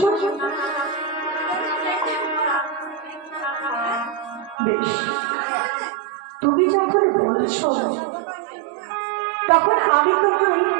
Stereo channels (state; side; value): drops out; left; at 4.5 s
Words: না? বেশ, তুমি যখন বলছো তখন আমি